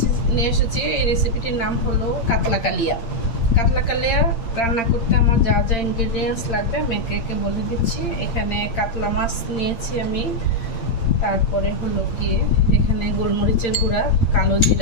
নিয়ে এসেছি এই রেসিপিটির নাম হলো কাতলা কালিয়া। কাতলা কালিয়া রান্না করতে আমার যা যা ইনগ্রেডিয়েন্টস লাগবে আমি একে একে বলে দিচ্ছি। এখানে কাতলা মাছ নিয়েছি আমি, তারপরে হলো গিয়ে এখানে গোলমরিচের গুঁড়া, কালো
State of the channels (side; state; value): right; late; 8.7 ms